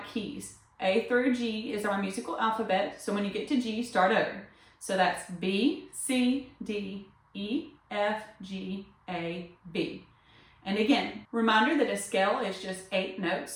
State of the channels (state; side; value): identical; both; correlation 1.00